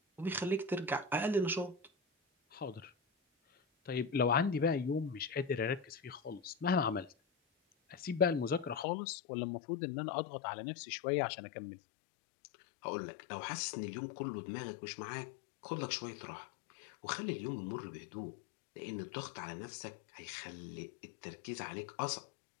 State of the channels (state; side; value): drops out; right; at 8.8 s